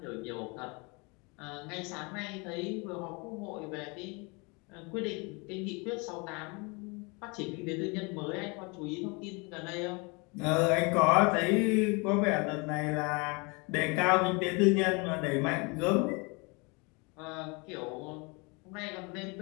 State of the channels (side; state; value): right; quieter; 29.7 dB